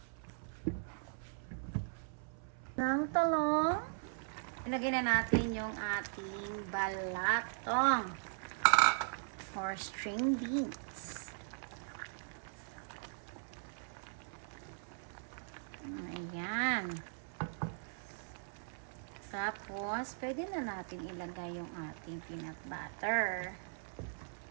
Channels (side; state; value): left; silent; 52 dB below the other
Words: Ng talong. Ilagay na natin yung ating balatong or string beans. Ayan. Tapos, pwede na natin ilagay yung ating peanut butter.